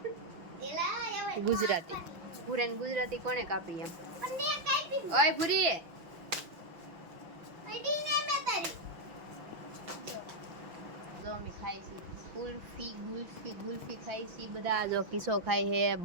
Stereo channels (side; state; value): left; late; 5.9 ms